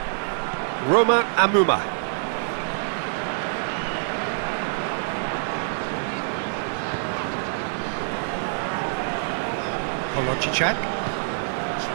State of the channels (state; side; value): silent; left; digital silence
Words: Romain Amouma. Polojicak